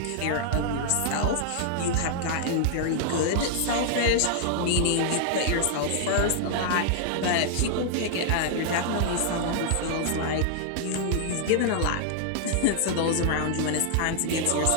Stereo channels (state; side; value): different; both; correlation -0.01